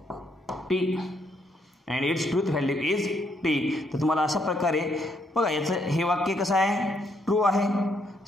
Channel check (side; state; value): both; normal; correlation 0.73